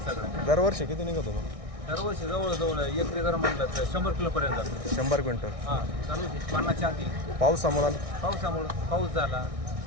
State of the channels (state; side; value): late; left; 1.6 ms